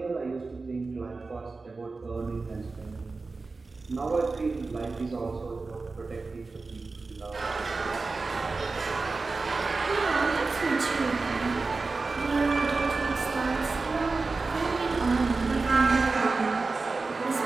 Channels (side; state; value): left; quieter; 3.9 dB